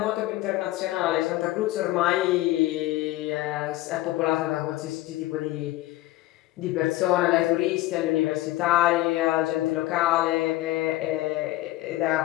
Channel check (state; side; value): quieter; right; 17.1 dB